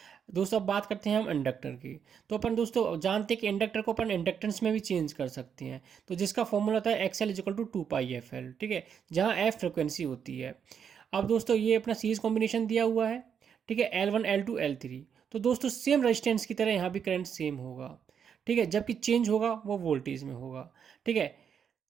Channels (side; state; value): left; quieter; 7.6 dB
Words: दोस्तों अब बात करते हैं हम इंडक्टर की। तो अपन दोस्तों जानते हैं कि इंडक्टर को अपन इंडक्टेंस में भी चेंज कर सकते हैं, तो जिसका फॉर्मूला होता है एक्सएल इक्वल टू 2πfl, ठीक है, जहाँ एफ फ्रिक्वेंसी होती है। अब दोस्तों ये अपना सीरीज कॉम्बिनेशन दिया हुआ है, ठीक है, L1 L2 L3। तो दोस्तों सेम रेजिस्टेंस की तरह यहाँ भी करंट सेम होगा, ठीक है, जबकि चेंज होगा वो वोल्टेज में होगा। ठीक है,